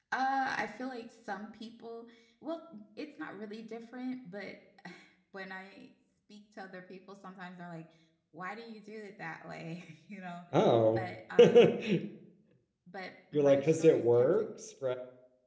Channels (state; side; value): identical; both; correlation 1.00